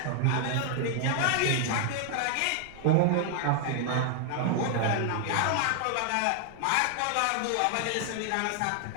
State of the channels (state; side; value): different; both; correlation 0.00